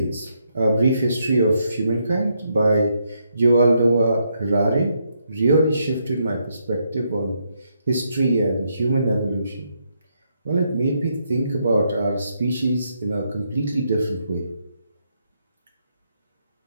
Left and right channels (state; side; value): inverted; both; correlation -0.77